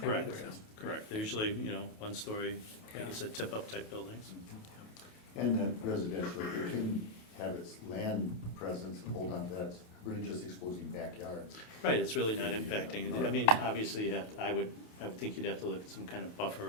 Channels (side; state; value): right; late; 28 ms